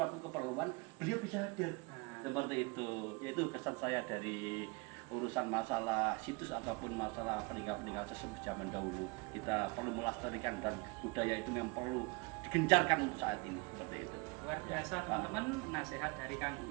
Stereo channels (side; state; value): left; quieter; 28.3 dB